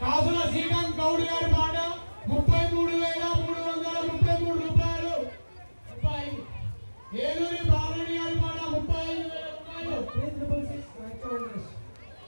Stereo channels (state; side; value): inverted; both; correlation -1.00